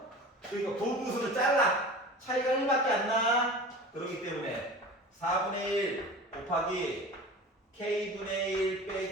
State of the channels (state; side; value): normal; both; correlation 0.36